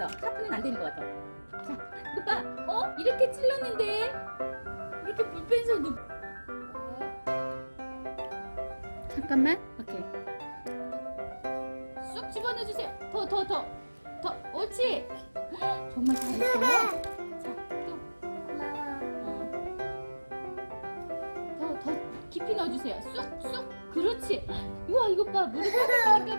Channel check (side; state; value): both; inverted; correlation -1.00